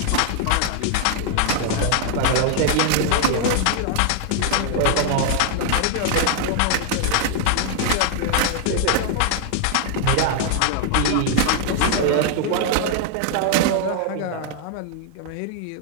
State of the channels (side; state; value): both; different; correlation 0.00